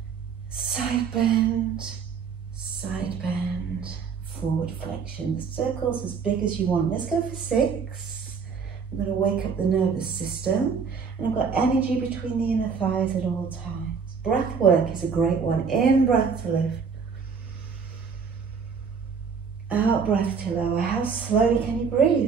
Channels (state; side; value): quieter; left; 5.9 dB